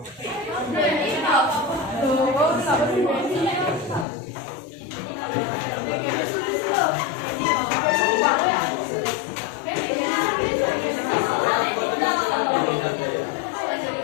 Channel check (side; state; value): right; drops out; at 4.0 s